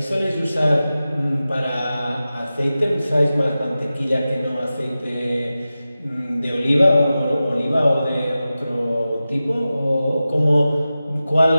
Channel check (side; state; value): both; inverted; correlation -0.94